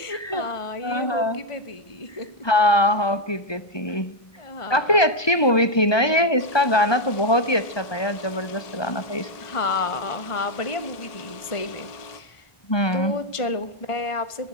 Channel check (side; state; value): right; late; 1.3 ms